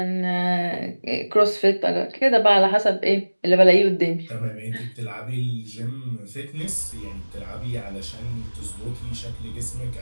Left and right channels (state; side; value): inverted; both; correlation -1.00